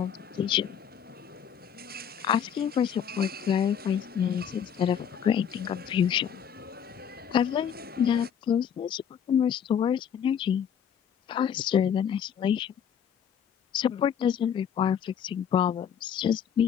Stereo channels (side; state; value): right; quieter; 8.3 dB